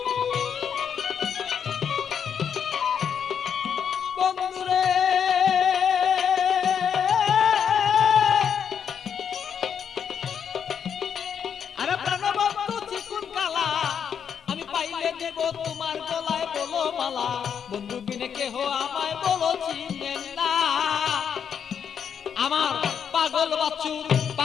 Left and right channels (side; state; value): right; quieter; 7.7 dB